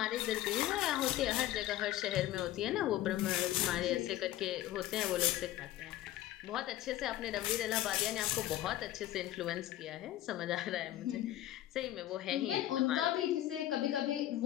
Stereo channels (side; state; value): right; quieter; 13.9 dB